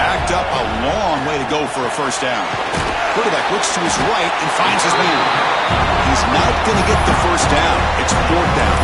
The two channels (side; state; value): both; identical; correlation 1.00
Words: up a long way to go for a 1st down. Quarterback looks to his right and finds his man. He's not going to get the 1st down. It's 4th down.